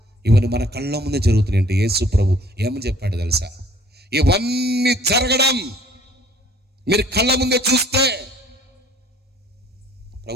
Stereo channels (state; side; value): normal; both; correlation 0.56